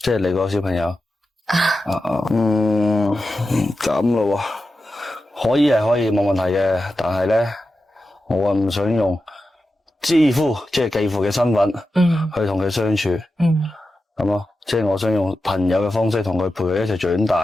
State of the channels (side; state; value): both; normal; correlation 0.91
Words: 係你個小朋友咁咯喎，可以係可以冇問題嘅，但係咧。我唔想用繼父即係繼父嘅身份去同佢相處，咁咯，即係我想用朋友嘅方式同佢陪佢一齊長大